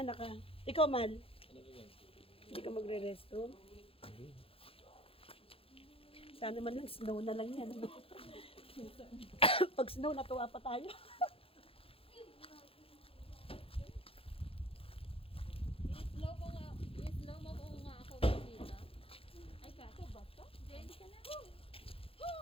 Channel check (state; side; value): late; right; 0.27 ms